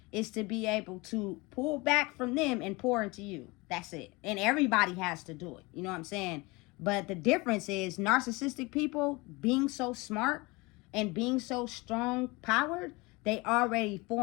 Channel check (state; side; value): quieter; right; 24.6 dB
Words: is to be able to pull back from them and pour into you. That's it. And everybody has to do it. You know what I'm saying? But the difference is narcissistic people being so smart and being so strong powered, they already